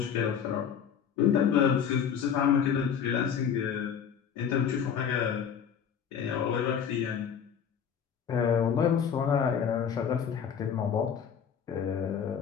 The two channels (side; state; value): right; quieter; 7.7 dB